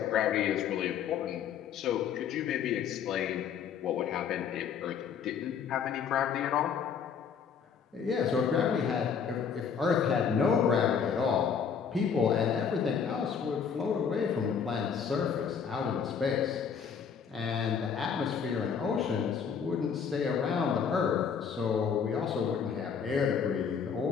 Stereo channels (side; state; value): right; quieter; 6.9 dB